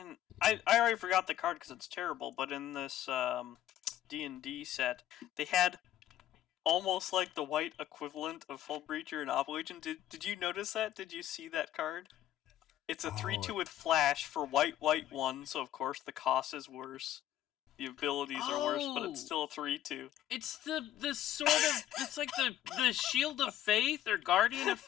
I already forgot the card because it's terrible, but in this D&D set, they had almost like the white equivalent of Hull Breacher and Obligation. Did you notice that? Did you see that card? It's a 3/2 with flash for white 1, so of course the cost is worse. The abilities are worse, but it's still a 3/2. It's the sort of it's like the Shield of Faith or Guardian of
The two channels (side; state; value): right; quieter; 12.5 dB